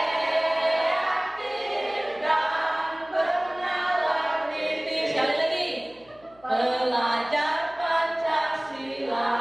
dan bernalar niti. Sekali lagi, belajar Pancasila,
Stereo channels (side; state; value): left; noise; hum, 29 dB below the sound